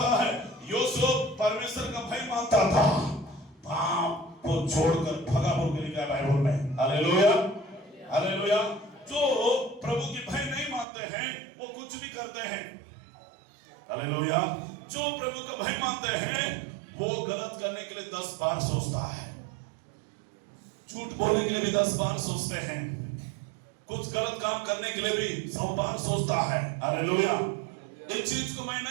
है यूसुफ परमेश्वर का भय मानता था, पाप को छोड़कर भगा बोल के लिखा है बाइबल में। Hallelujah, hallelujah. जो प्रभु की भय नहीं मानते हैं वो कुछ भी करते हैं। हालेलुया। जो प्रभु का भय मानते हैं वो गलत करने के लिए 10 बार सोचता है, झूठ बोलने के लिए भी 10 बार सोचते हैं, कुछ गलत काम करने के लिए भी 100 बार सोचता है। हालेलुया। एक चीज को मैं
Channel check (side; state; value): left; drops out; at 10.9 s